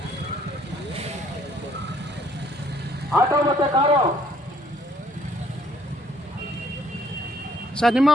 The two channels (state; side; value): normal; both; correlation 0.63